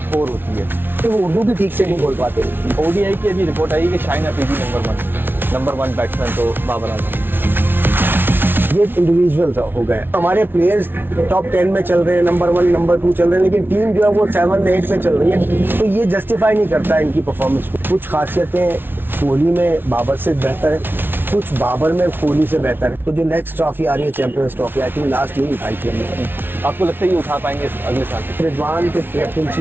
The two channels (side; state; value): left; late; 0.10 ms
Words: पोर होती है, तो वो उर्दू भी ठीक से नहीं बोल पाते। ओडीआई की अभी रिपोर्ट आई कि Shaheen Afridi number one batsman तो बाबर आजम। ये इंडिविजुअल हो गए। हमारे प्लेयर्स टॉप 10 में चल रहे हैं, नंबर 1 नंबर 2 चल रहे हैं, लेकिन टीम जो है वो 7 8 पे चल रही है। तो ये जस्टिफाई नहीं करता इनकी परफॉर्मेंस को। कुछ खासियतें कोहली में बाबर से बेहतर है, कुछ बाबर में कोहली से बेहतर है। तो जो नेक्स्ट ट्रॉफी आ रही है champions trophy, I think last year उठाई थी हमने। आपको लगता है ये उठा पाएंगे अगले साल? रिजवान के